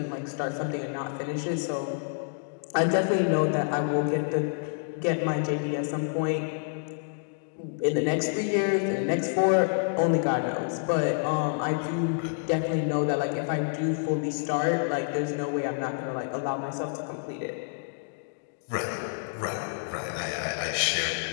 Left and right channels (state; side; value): silent; right; digital silence